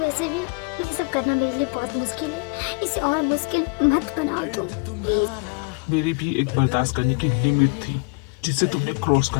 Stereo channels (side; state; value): right; quieter; 32.0 dB